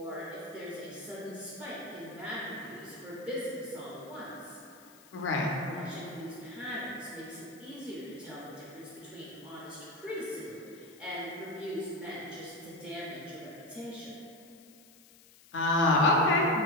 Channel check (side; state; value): left; noise; hiss, 24 dB below the sound